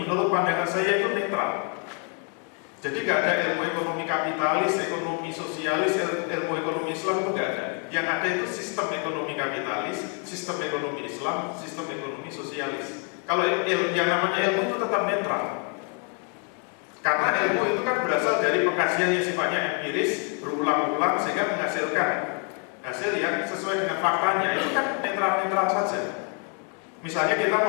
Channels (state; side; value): quieter; right; 39.8 dB